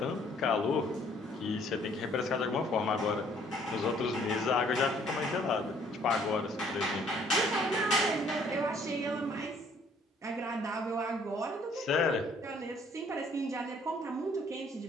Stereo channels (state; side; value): normal; both; correlation 0.61